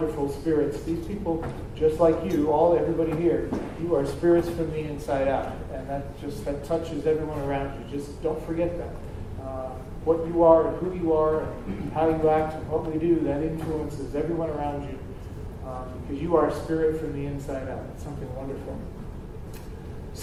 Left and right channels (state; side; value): identical; both; correlation 1.00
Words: spirits. These people, just like you, everybody here, you are spirits from the inside out, and that touches everyone around you. Just don't forget that. What you are and who you are and how you act and what we do, that influences everyone around you, because you are a spirit from the inside out. It's something wonderful.